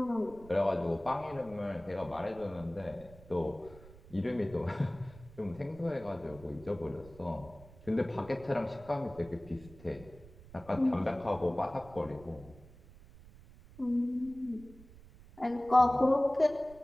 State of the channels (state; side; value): noise; right; rumble, 20 dB below the sound